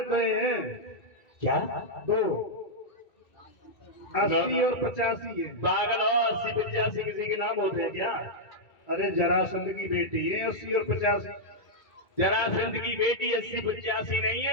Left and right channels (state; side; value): late; right; 2.2 ms